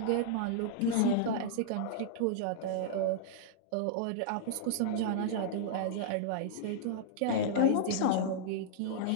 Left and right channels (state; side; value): different; both; correlation -0.01